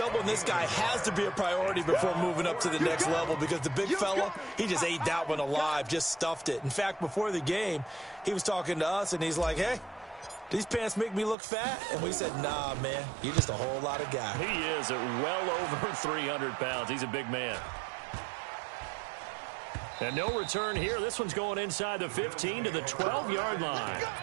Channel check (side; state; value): left; drops out; at 11.4 s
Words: this guy has to be a priority before moving up to the next level because the big fella, he just ate that one alive, just stuffed it. In fact, before the game, he was talking to us, and he's like, hey, these pants make me look fat? And we said, nah, man, you're just a whole lot of guy. He is at well over 300 pounds. He's a big man. And no return here. This one's going inside the 15 to the 12-yard line.